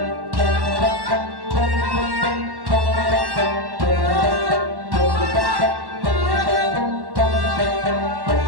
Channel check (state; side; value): late; left; 1.1 ms